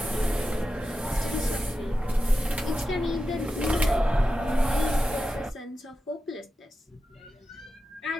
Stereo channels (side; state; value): both; normal; correlation 0.91